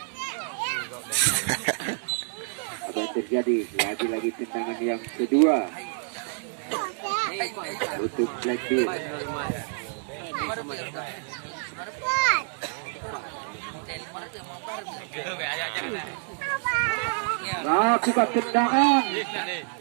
Apa yang terjadi? Lagi-lagi tendangan yang kedua untuk Blackbeard. Lakukan tendangan.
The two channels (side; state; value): left; silent; 60 dB below the other